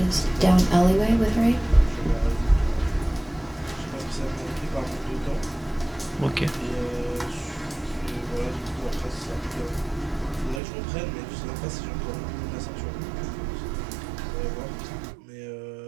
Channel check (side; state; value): left; drops out; at 10.6 s